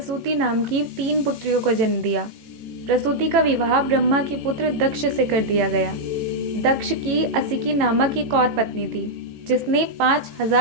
नाम की 3 पुत्रियों को जन्म दिया। प्रसूति का विवाह ब्रह्मा के पुत्र दक्ष से कर दिया गया। दक्ष की असिकी नामक एक और पत्नी थी जिसने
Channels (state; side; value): late; left; 18 ms